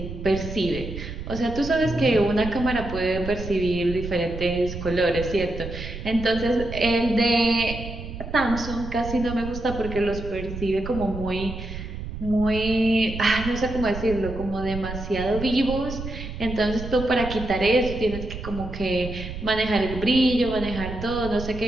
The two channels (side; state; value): right; noise; rumble, 8 dB below the sound